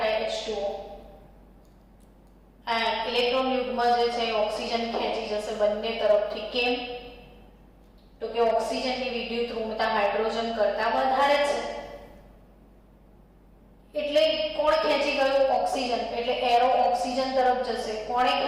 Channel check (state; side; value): identical; both; correlation 1.00